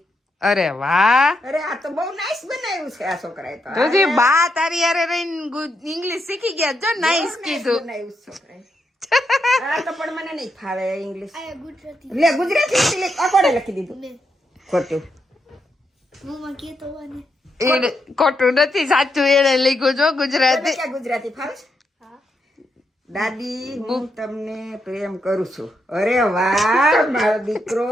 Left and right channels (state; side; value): normal; both; correlation 0.82